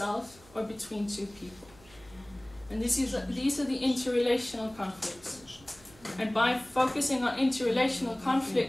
or between two people. And these are the interrelational conflicts. And by focusing on interrelational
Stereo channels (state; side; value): noise; right; hum, 25 dB below the sound